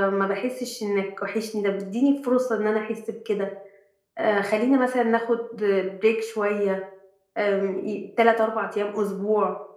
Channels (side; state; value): both; identical; correlation 1.00